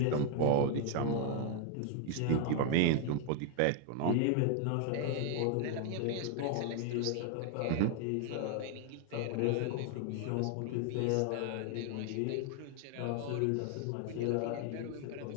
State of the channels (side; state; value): both; different; correlation 0.00